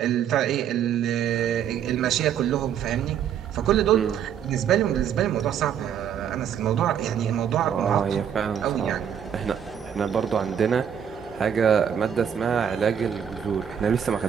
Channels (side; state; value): left; quieter; 8.6 dB